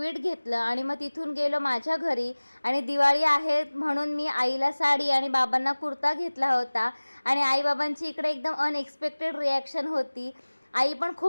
घेतलं आणि मग तिथून गेलो माझ्या घरी। आणि दिवाळी आहे म्हणून मी आईला साडी आणि बाबांना कुर्ता घेतला होता। आणि आई बाबांची इकडे एकदम अनएक्सपेक्टेड रिॲक्शन होती। आई पण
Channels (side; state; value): both; inverted; correlation -1.00